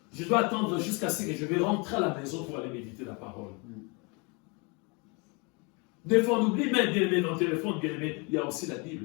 Je dois attendre jusqu'à ce que je vais rentrer à la maison pour aller méditer la parole. Des fois, on oublie même, bien-aimé, dans le téléphone, bien-aimé, il y a aussi la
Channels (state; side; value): quieter; right; 31.0 dB